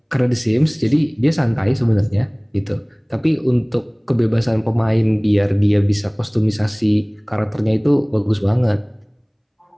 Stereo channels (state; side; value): identical; both; correlation 1.00